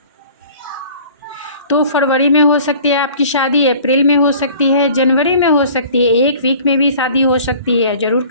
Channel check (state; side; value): inverted; both; correlation -0.47